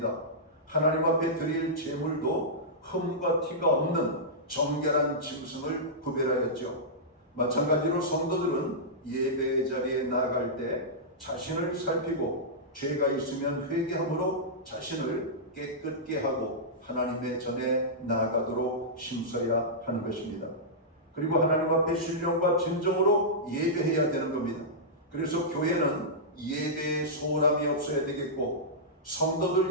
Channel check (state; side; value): normal; both; correlation -0.13